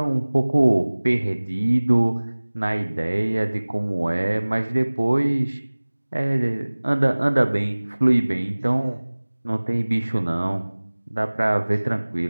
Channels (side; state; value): both; inverted; correlation -1.00